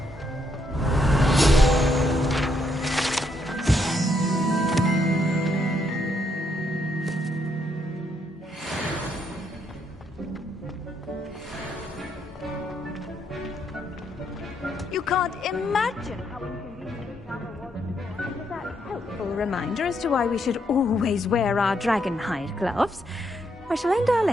imagine how inconvenient travel was before. And with that helpful reminder as to why we should always wear our dragon hide gloves, I shall end our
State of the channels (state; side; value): normal; both; correlation 0.75